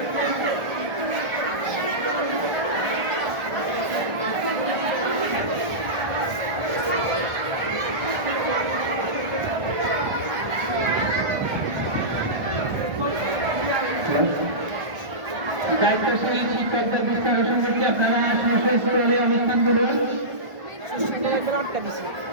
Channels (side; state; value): left; late; 1.4 ms